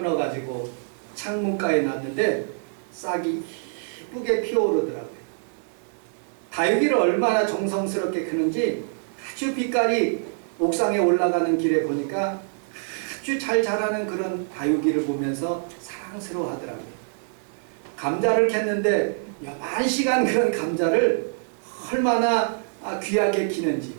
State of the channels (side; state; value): left; silent; digital silence